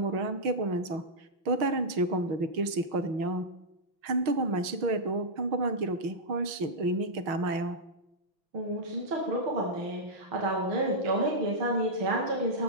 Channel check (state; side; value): late; left; 6.3 ms